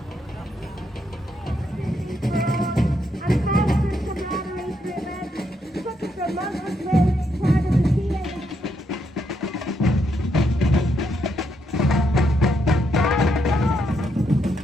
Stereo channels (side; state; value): both; normal; correlation 0.78